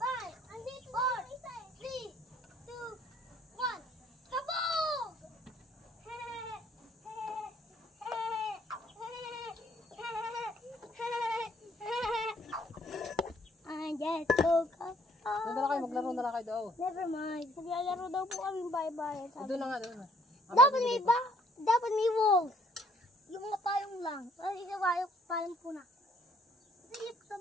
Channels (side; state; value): both; normal; correlation 0.63